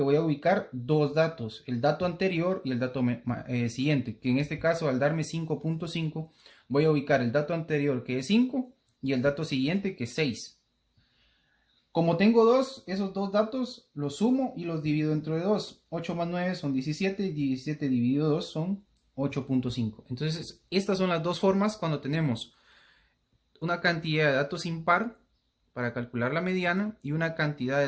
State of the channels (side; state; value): both; identical; correlation 1.00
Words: voy a ubicar dos datos, el dato anterior y el dato siguiente, que en este caso al darme 5.5, voy a ubicar el dato anterior que es 5 y el dato siguiente que es 6. Como tengo dos, esos dos datos los sumo y los divido entre 2. 8 más 9 son 17 y 17 dividido 2 son 8.5. Entonces, estas son las dos formas cuando tenemos una cantidad de datos impar para calcular la mediana y una cantidad de